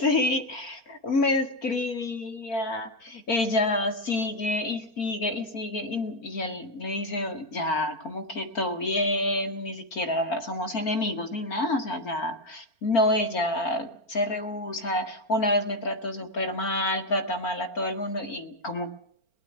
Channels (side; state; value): right; late; 4.4 ms